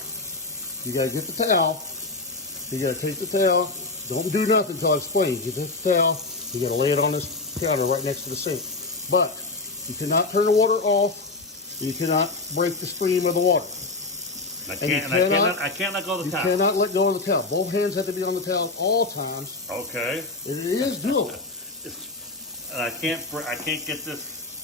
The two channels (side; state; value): right; quieter; 3.5 dB